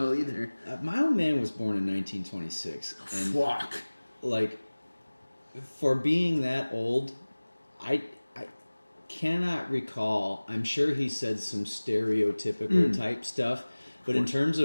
either. My old man was born in 1926. And Fuck. like, for being that old, I cannot recall. I'm sure he said some stereotypical type stuff, but in terms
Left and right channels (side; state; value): both; inverted; correlation -1.00